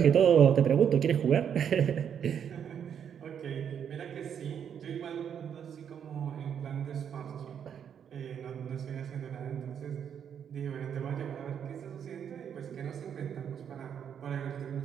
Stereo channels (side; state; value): left; quieter; 8.3 dB